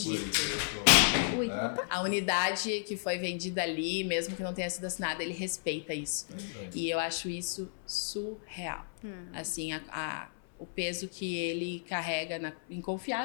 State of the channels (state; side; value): silent; right; 56 dB below the other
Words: Ui, Né? A unidade que foi vendida ali, mesmo que não tenha sido assinada, ele respeita isso. E eu acho isso surreal. Assim, o peso que ele carrega em